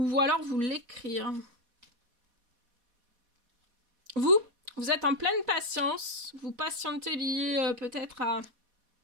alors vous l'écrire. Vous êtes en pleine patience, vous patientez lié peut-être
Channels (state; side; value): late; left; 4.1 ms